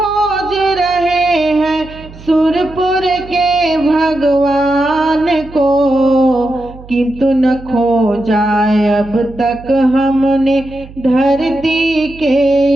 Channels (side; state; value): right; noise; hum, 18 dB below the sound